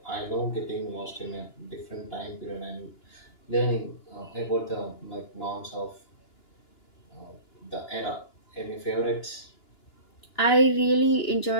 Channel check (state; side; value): late; right; 2.9 ms